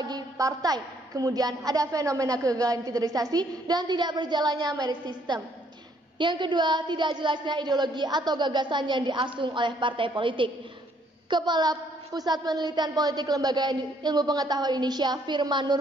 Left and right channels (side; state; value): both; normal; correlation 0.67